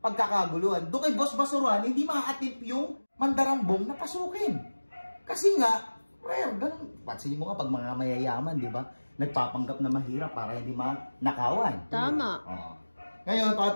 Doon kay Boss Basurahan, hindi maaatip yung mandarambong na pasukin. Kasi nga, rare, ganun. Pansinin mo nga pag mga mayayaman, di ba? Nagpapanggap na mahirap para hindi nakawan. Tama. Ngayon,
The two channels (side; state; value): both; inverted; correlation -1.00